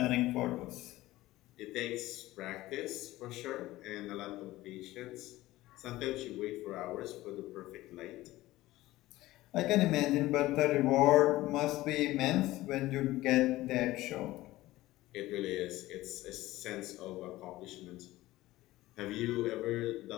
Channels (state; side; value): quieter; right; 17.2 dB